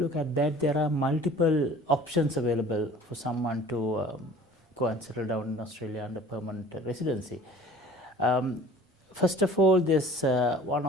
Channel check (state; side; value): normal; both; correlation 0.47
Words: at that, there are multiple options available for someone to go and settle down in Australia under permanent residency. first of all, there's one